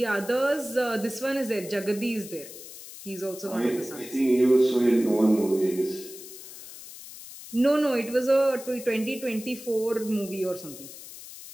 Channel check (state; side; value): noise; left; hiss, 15 dB below the sound